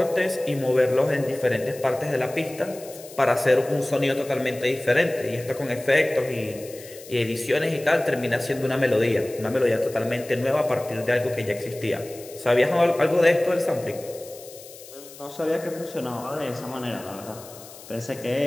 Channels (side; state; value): left; noise; hiss, 18 dB below the sound